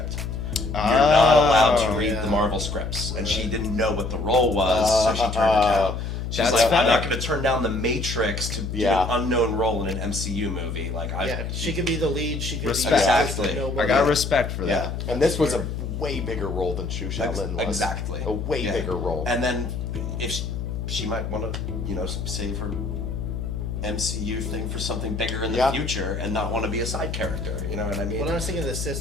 You're not allowed to read the Marvel scripts, and she didn't know what the role was, so she turned it down. She's That's like, I'm fair. not going to turn down the Matrix to do an unknown role in an MCU movie. Like, She could be the lead. She could Respect. be Exactly. I got respect for Yeah. that. And this was a way bigger role than Xu Shaolin was. Exactly. A way bigger role. And then if she might want to, save her MCU thing for something bigger in the future and not want to be a side character. You know what I mean? When I was thinking of the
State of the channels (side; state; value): left; noise; hum, 4 dB below the sound